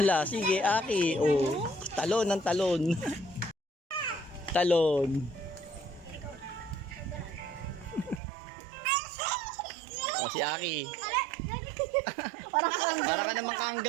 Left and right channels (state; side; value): drops out; left; at 8.2 s